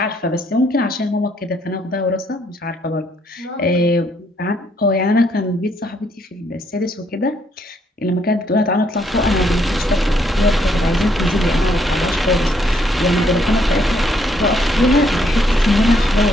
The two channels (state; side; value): normal; both; correlation 0.71